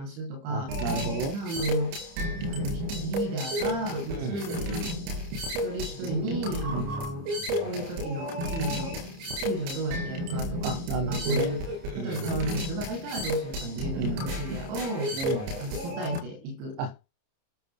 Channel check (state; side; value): late; left; 29 ms